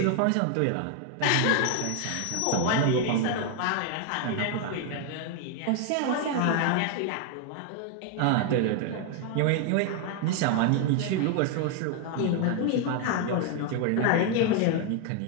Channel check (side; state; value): both; different; correlation 0.01